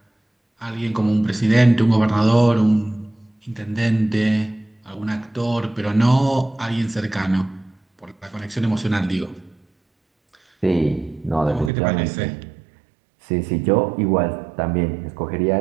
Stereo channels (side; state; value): left; drops out; at 11.7 s